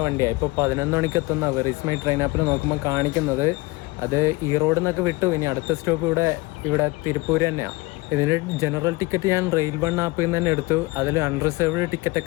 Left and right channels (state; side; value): quieter; right; 23.2 dB